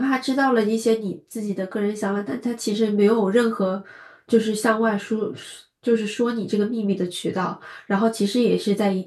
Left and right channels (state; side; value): identical; both; correlation 1.00